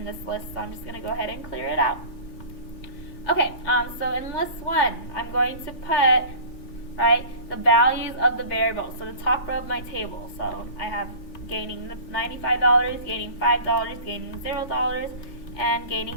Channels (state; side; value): late; right; 3.4 ms